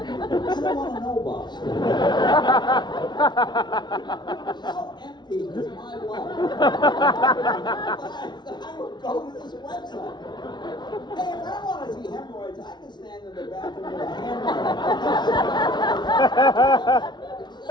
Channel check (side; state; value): right; late; 0.21 ms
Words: don't want to know Bob's story. How empty is my life? I would go to this website. Hey, if I want to see hemorrhoids, I can stand in the bathroom with a hammer.